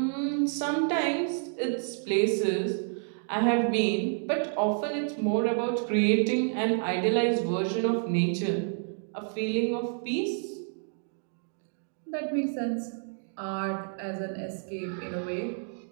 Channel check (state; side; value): silent; left; 58 dB below the other